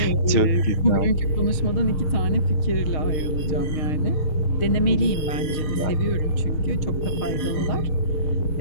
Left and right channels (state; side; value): late; right; 6.4 ms